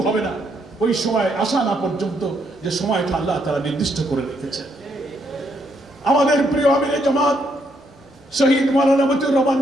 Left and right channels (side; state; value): both; normal; correlation 0.75